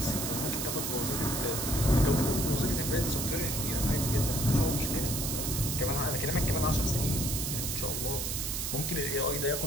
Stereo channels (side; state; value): right; noise; hiss, 2 dB below the sound